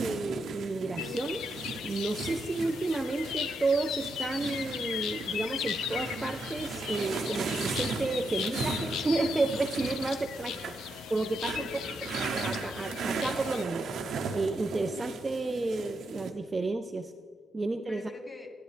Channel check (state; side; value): normal; both; correlation 0.82